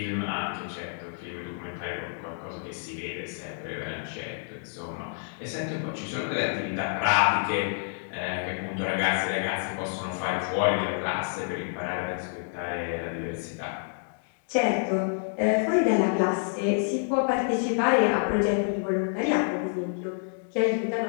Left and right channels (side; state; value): right; silent; digital silence